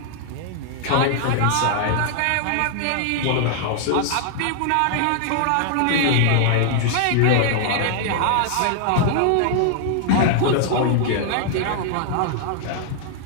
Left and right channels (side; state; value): both; different; correlation 0.00